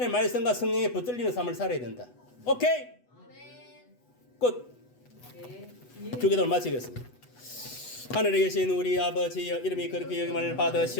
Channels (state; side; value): late; right; 8.1 ms